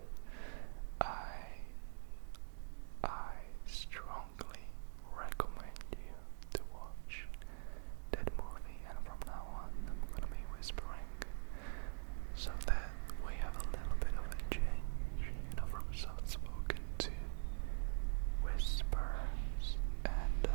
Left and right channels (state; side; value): silent; left; digital silence